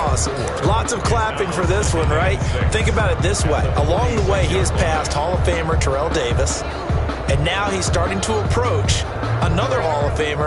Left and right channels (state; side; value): identical; both; correlation 1.00